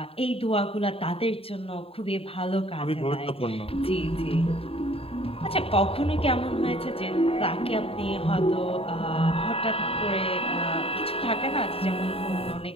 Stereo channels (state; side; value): late; right; 0.27 ms